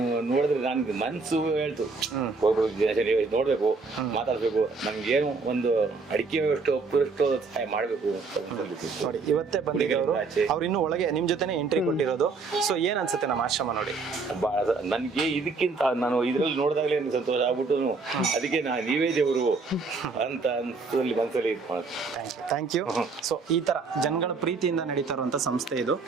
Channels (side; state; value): left; quieter; 4.3 dB